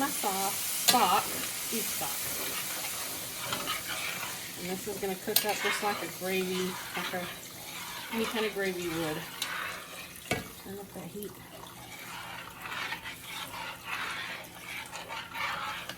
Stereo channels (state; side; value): identical; both; correlation 1.00